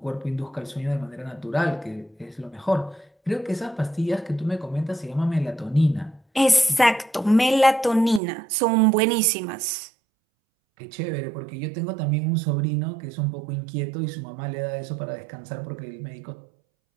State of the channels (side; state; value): left; drops out; at 8.2 s